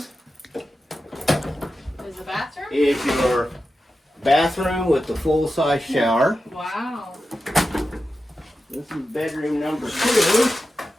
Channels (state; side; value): normal; both; correlation 0.91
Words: Is the bathroom? is your bathroom with the full-size shower. Wow. This is bedroom number 2.